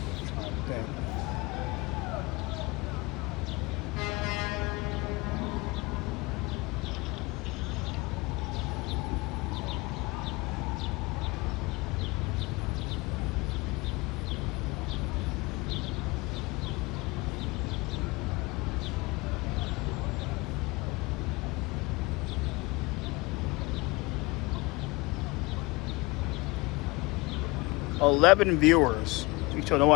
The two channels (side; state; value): right; quieter; 24.6 dB